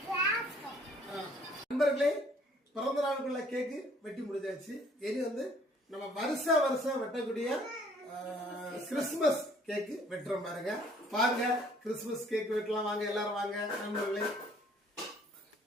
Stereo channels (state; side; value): normal; both; correlation 0.59